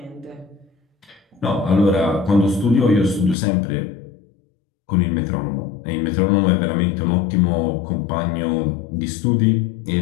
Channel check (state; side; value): drops out; right; at 3.4 s